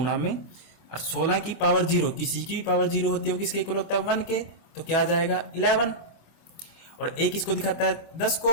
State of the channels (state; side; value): late; right; 25 ms